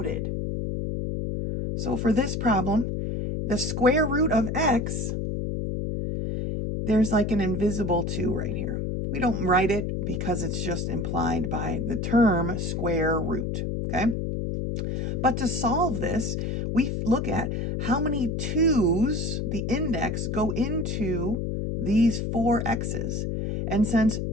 So for this problem, the square root of x, there's like an invisible 2 right here. We don't write it because it's just implied by the term square root, okay? But to solve this, we look at how many 2's, the index, go into these 4 x's. And since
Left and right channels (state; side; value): noise; left; hum, 2 dB below the sound